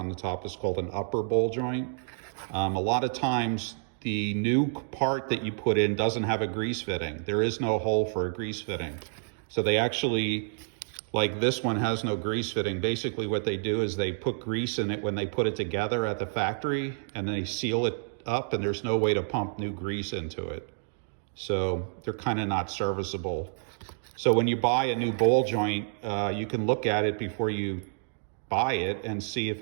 the top is called an upper ball joint. A lot of times the new part that you put in doesn't have a grease fitting. There is no hole for a grease fitting. So they actually, like this one has no grease fitting. Basically what they do is they put grease in it when they put it together at the factory, and then they seal it up, and there's no way to pump new grease into it. So they're kind of not serviceable. So when you buy a new ball joint, you can look at it before you buy it and see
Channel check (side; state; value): left; silent; digital silence